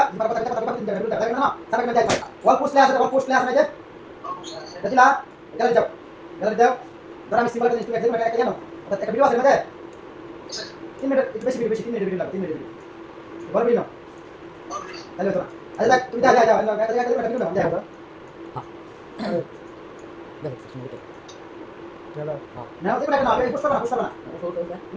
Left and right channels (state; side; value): identical; both; correlation 1.00